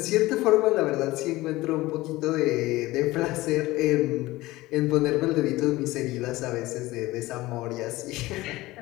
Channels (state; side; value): quieter; right; 18.7 dB